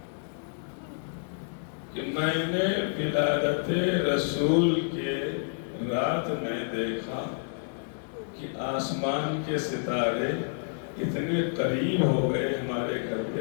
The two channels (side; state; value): right; silent; digital silence